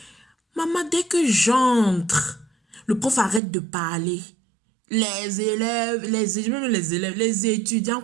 Maman, dès que j'entre, le prof arrête de parler. Les étudiants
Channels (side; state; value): left; drops out; at 3.4 s